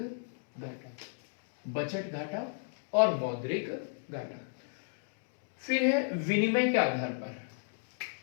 बजट घाटा और मौद्रिक घाटा। फिर है विनिमय के आधार पर।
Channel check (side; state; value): right; silent; digital silence